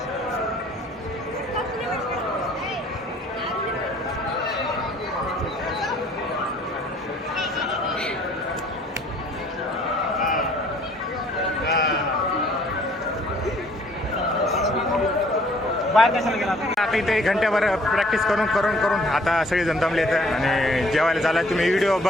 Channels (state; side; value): normal; both; correlation 0.58